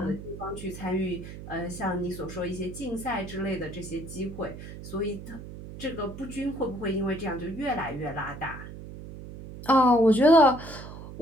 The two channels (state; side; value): noise; right; hum, 12 dB below the sound